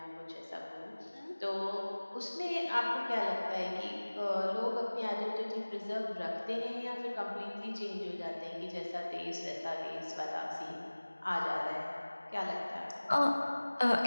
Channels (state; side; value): inverted; both; correlation -1.00